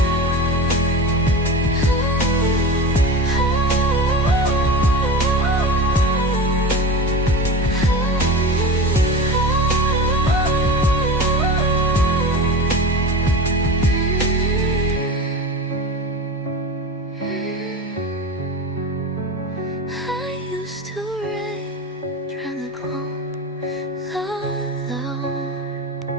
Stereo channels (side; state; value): both; normal; correlation 0.30